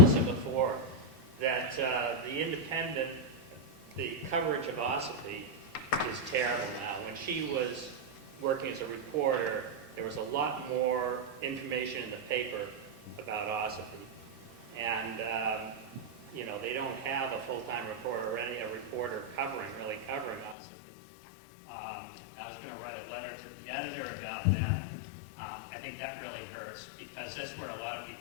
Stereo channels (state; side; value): drops out; right; at 20.6 s